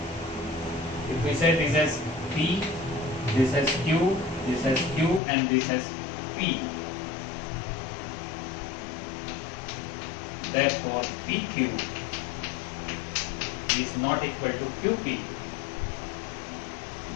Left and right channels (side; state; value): right; drops out; at 5.2 s